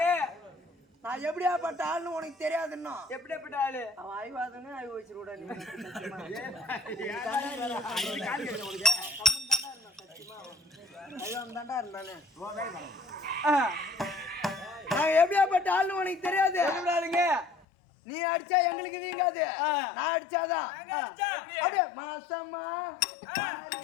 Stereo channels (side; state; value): right; drops out; at 17.7 s